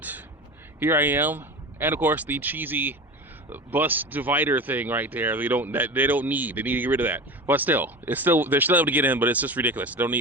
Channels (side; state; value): both; normal; correlation 0.30